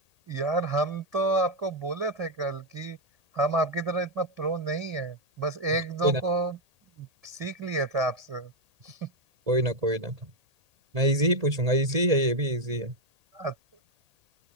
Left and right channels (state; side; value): late; left; 1.8 ms